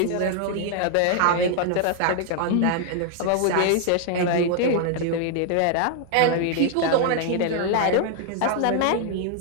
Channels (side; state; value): both; different; correlation 0.00